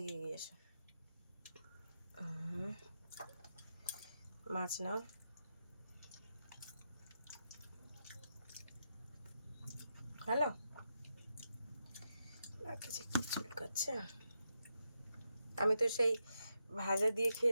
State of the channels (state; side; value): inverted; both; correlation -0.85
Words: এসো। মাছ নাও। হ্যালো, কিছু চুলকাচ্ছে। আমি তো সেই ভাজা দিয়ে